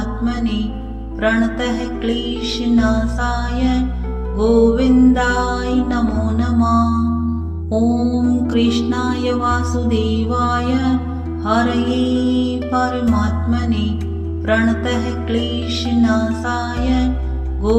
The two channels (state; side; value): identical; both; correlation 1.00